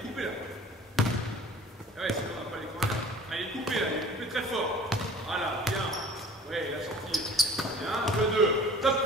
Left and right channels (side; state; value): both; normal; correlation 0.46